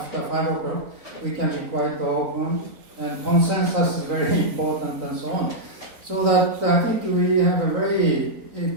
5 o'clock, we can be quite open, and consensus is very important, and so on. So that I think we have a very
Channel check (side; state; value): left; late; 3.8 ms